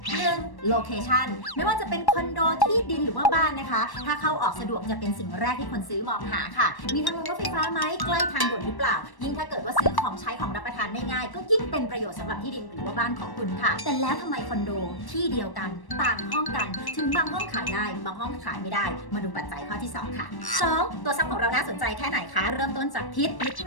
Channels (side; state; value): right; late; 1.1 ms